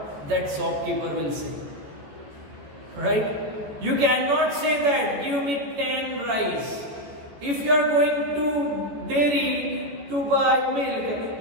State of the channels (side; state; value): left; late; 14 ms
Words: that shopkeeper will say? Right? You cannot say that, give me 10 rice. If you are going to dairy to buy milk,